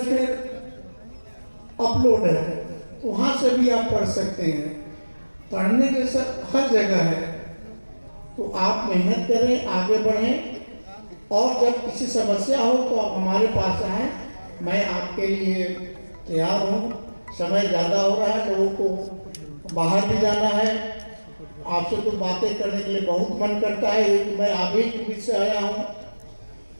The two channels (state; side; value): inverted; both; correlation -1.00